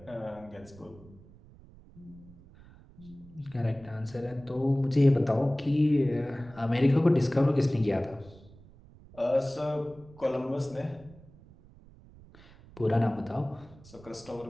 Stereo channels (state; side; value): noise; right; rumble, 22 dB below the sound